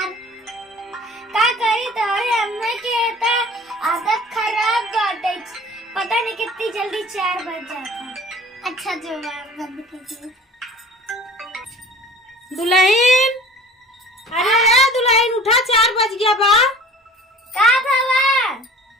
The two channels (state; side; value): normal; both; correlation 0.44